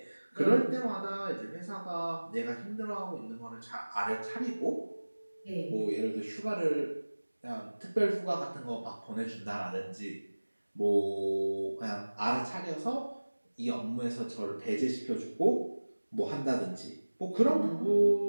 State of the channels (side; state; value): both; inverted; correlation -1.00